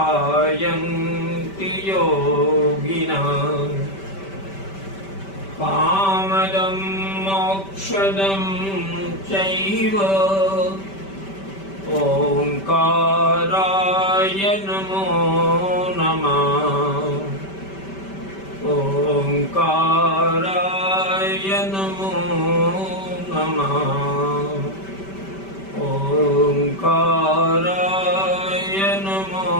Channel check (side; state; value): right; late; 5.1 ms